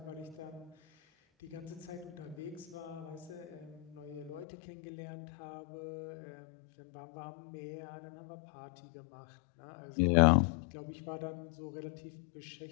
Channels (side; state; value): right; drops out; at 4.5 s